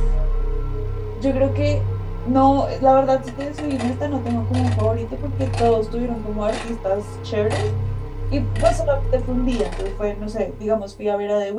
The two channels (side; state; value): both; identical; correlation 1.00